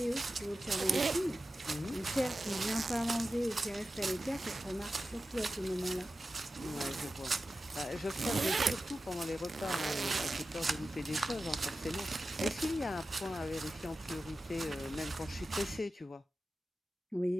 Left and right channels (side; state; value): both; normal; correlation 0.93